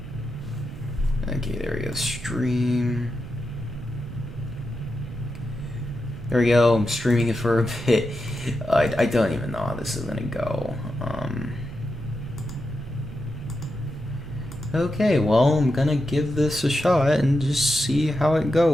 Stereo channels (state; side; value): noise; right; rumble, 12 dB below the sound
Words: Okay, there we go, stream. There we go, I'm streaming it for a bit. I don't even know how this is gonna go. Okay, well, I'm gonna give this a shot and just see how it